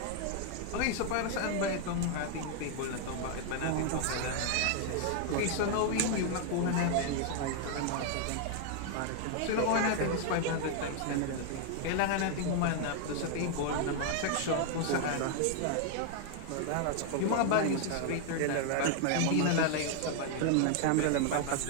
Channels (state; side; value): different; both; correlation 0.00